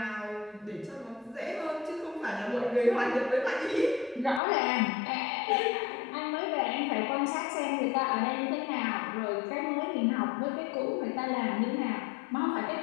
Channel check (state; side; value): drops out; right; at 4.4 s